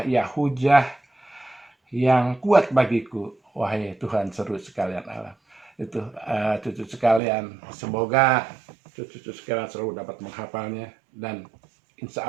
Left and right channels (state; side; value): drops out; left; at 7.2 s